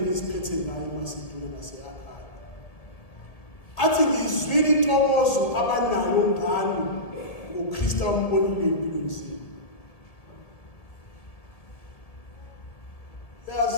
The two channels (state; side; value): late; right; 1.6 ms